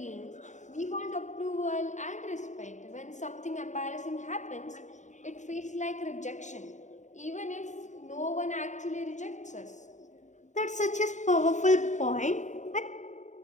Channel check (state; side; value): late; right; 0.35 ms